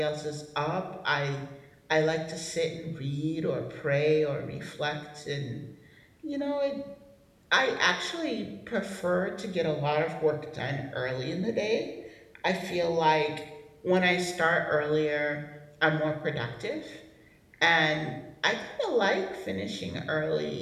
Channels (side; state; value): both; identical; correlation 1.00